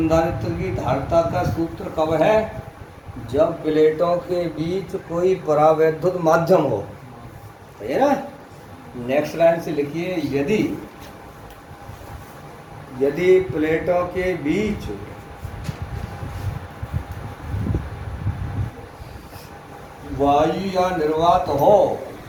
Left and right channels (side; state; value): both; identical; correlation 1.00